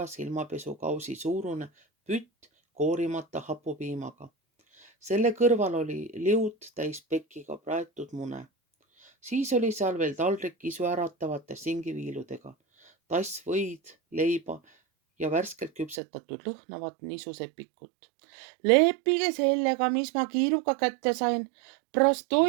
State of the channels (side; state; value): left; drops out; at 16.0 s